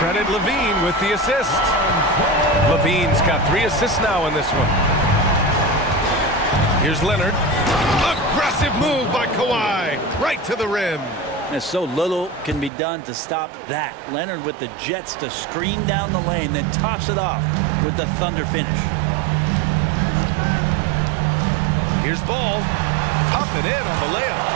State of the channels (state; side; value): drops out; left; at 12.7 s